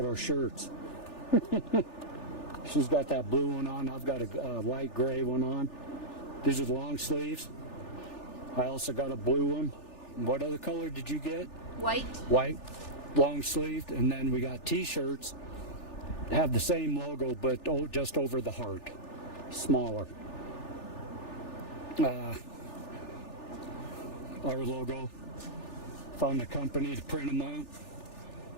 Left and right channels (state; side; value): late; right; 3.4 ms